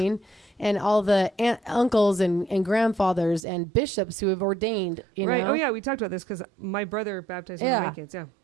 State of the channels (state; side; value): drops out; left; at 3.4 s